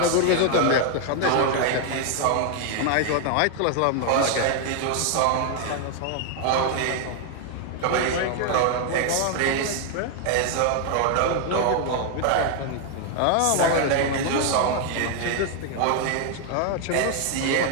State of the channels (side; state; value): both; different; correlation 0.00